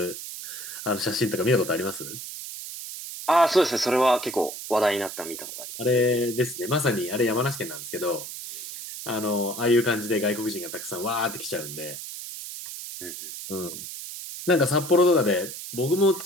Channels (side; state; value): right; noise; hiss, 9 dB below the sound